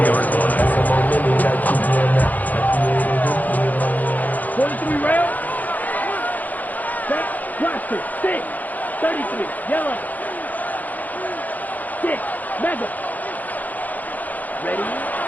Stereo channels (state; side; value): late; right; 0.081 ms